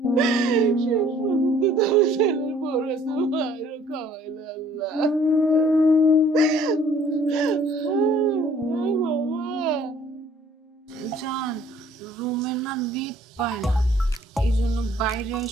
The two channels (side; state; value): both; normal; correlation 0.57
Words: শেষ পর্যন্ত তোমার ছেলের বড় তো মায়েরও খাওয়াইলে আল্লাহ। বাবা জান, রুমে না নেট পায় না, এই জন্য বাইরে